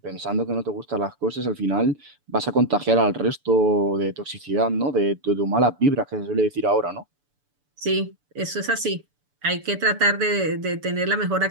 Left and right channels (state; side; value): late; left; 6.9 ms